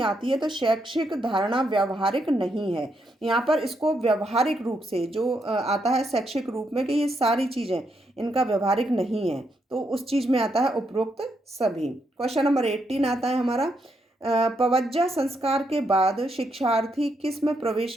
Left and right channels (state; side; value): normal; both; correlation 0.79